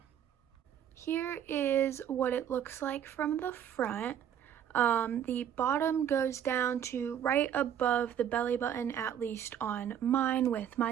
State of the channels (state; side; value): quieter; left; 9.6 dB